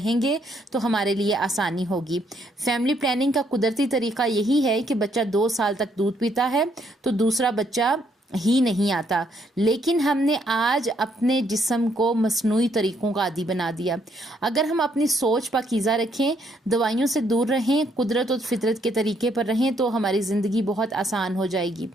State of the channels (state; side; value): normal; both; correlation 0.71